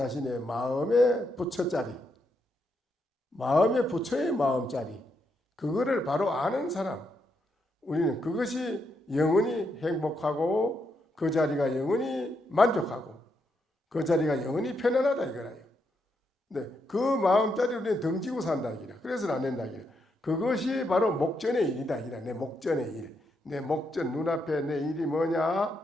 마음의 부처자리, 마음의 부처의 마음자리, 그거를 바로 아는 사람, 우리는 그것이 영원히 행복하고 그 자리가 영원히 만족하고 그 자리가 영원히 편안하다 이거라요. 근데 그 마음자리 우리는 덩지고 산다 이기라. 그래서는 안 된다 이기라. 그것이 바로 목전의 일이다 이기라. 내 목전의 일, 내 목전 눈앞에 내 일이 뭐냐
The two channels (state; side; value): normal; both; correlation 0.80